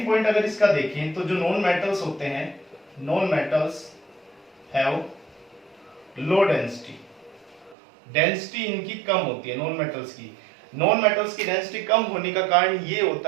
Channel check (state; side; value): drops out; left; at 7.8 s